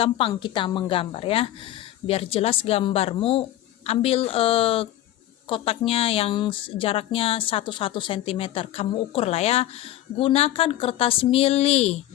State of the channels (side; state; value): right; quieter; 13.9 dB